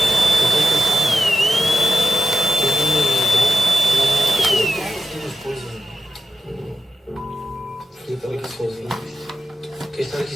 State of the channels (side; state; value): both; normal; correlation 0.90